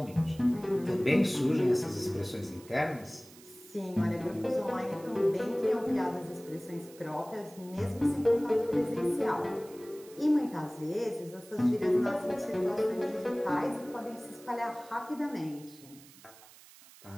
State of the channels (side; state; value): right; noise; hiss, 22 dB below the sound